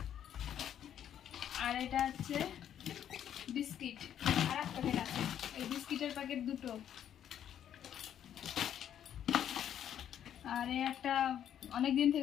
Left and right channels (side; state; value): right; quieter; 9.9 dB